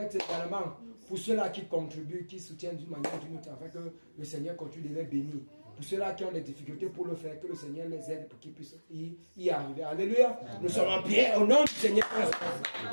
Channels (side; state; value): both; inverted; correlation -1.00